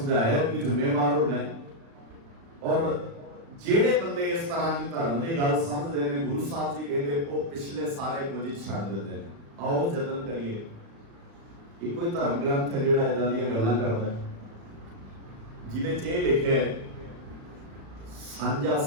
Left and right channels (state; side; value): late; left; 36 ms